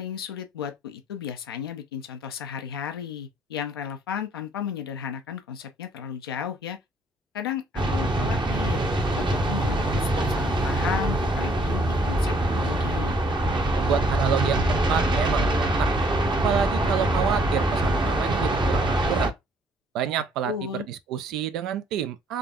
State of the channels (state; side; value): normal; both; correlation 0.63